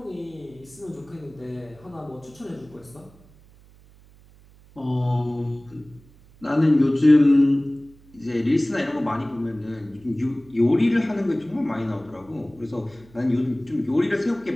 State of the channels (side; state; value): right; noise; hum, 26 dB below the sound